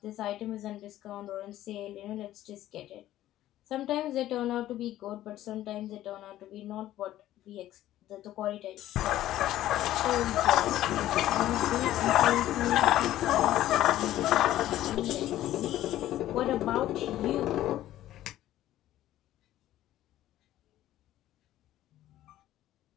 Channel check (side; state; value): right; quieter; 13.7 dB